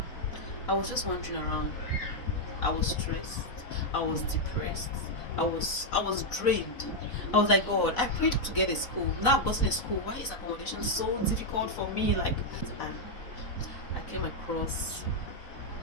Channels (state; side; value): late; right; 4.0 ms